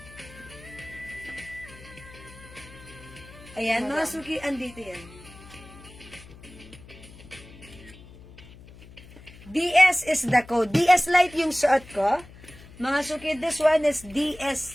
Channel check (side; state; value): left; noise; hum, 20 dB below the sound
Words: Ayan, mga suki, andito yan. DS is the code. DS Light yung suot ko. Mga suki, this one is